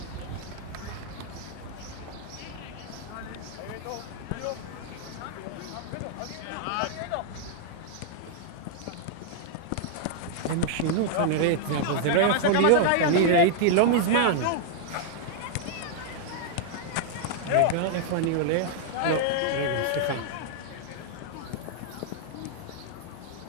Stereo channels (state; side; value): different; both; correlation -0.01